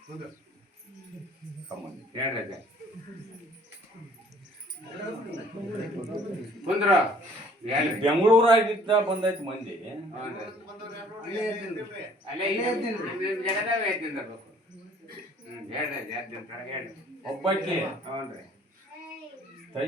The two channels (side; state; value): both; normal; correlation 0.57